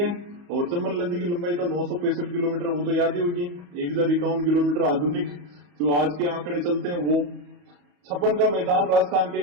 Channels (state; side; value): late; left; 34 ms